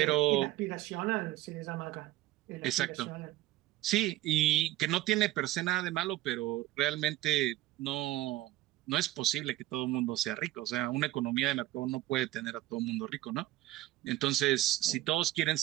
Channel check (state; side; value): quieter; left; 15.9 dB